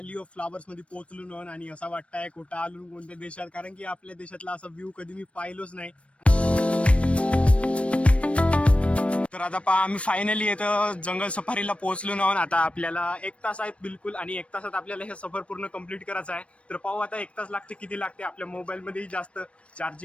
ऑफ फ्लावर्स मध्ये पोहोचलो ना, आणि असं वाटतंय कुठं आलो कोणत्या देशात, कारण की आपल्या देशातला असा व्ह्यू कधी मी पाहिलोच नाही. तर आता पहा, आम्ही फायनली इथं जंगल सफारीला पोहोचलो ना. आता आपल्याला 1 तास आहेत बिलकुल, आणि 1 तासात आपल्याला हे सफर पूर्ण कम्प्लीट करायचं आहे. तर पाहू आता 1 तास लागते किती लागते. आपल्या मोबाईलमध्येही जास्त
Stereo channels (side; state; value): right; late; 0.062 ms